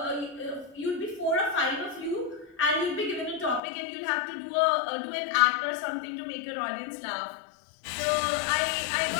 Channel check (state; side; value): drops out; right; at 3.6 s